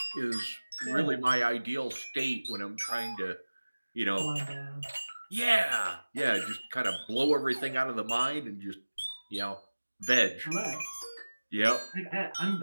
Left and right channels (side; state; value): both; inverted; correlation -1.00